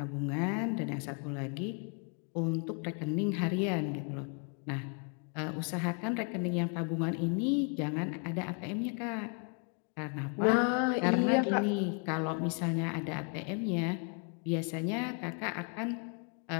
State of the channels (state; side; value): quieter; right; 39.3 dB